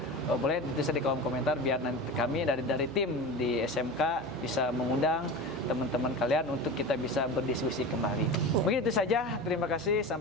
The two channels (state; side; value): noise; right; hum, 17 dB below the sound